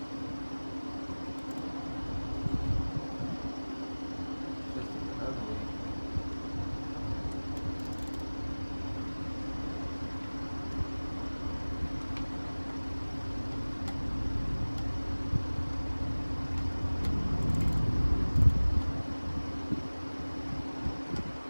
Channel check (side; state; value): both; inverted; correlation -1.00